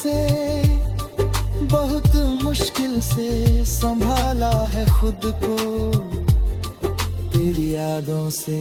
बहुत मुश्किल से संभाला है खुद को, तेरी यादों से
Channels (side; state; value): both; identical; correlation 1.00